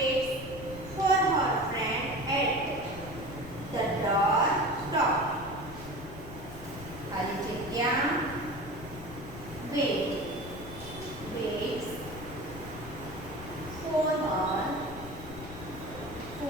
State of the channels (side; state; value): left; noise; rumble, 13 dB below the sound